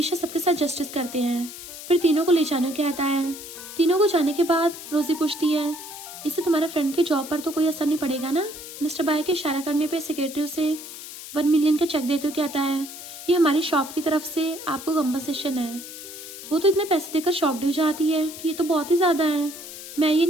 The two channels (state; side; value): noise; left; hiss, 12 dB below the sound